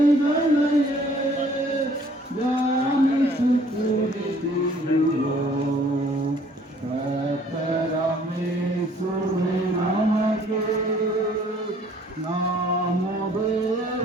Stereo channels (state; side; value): normal; both; correlation 0.57